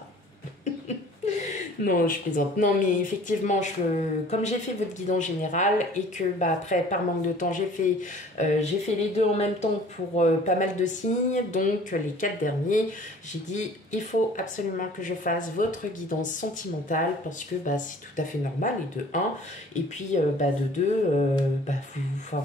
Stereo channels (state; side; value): normal; both; correlation 0.49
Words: Non, je plaisante. Non, mais effectivement, comme j'ai fait votre guidance générale et que après, par manque de temps, j'ai fait les deux en même temps pour pas mal de signes. Donc, les 4 derniers, j'ai dit, il faut absolument que je fasse votre guidance sentimentale parce que c'est tout à fait normal, et de 1. Et puis, de 2,